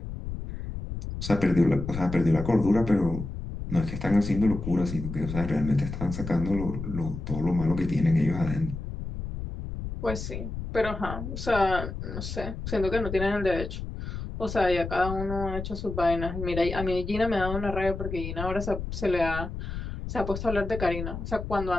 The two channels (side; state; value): left; noise; rumble, 7 dB below the sound